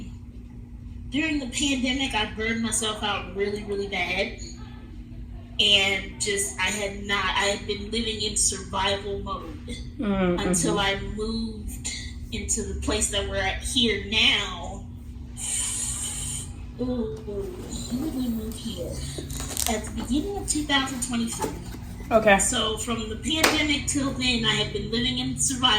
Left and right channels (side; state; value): both; identical; correlation 1.00